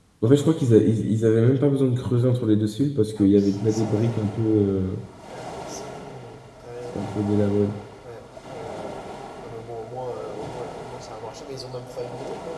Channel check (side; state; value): both; identical; correlation 1.00